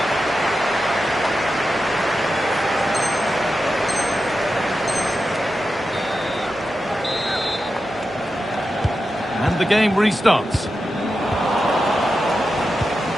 And the game restarts.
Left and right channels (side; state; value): both; normal; correlation 0.90